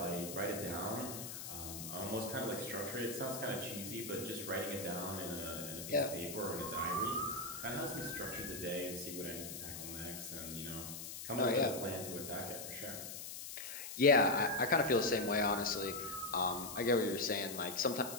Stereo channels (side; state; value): left; noise; hiss, 8 dB below the sound